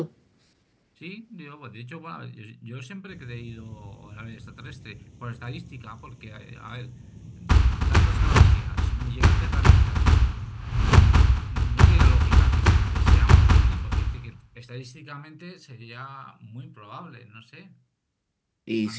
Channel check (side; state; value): both; identical; correlation 1.00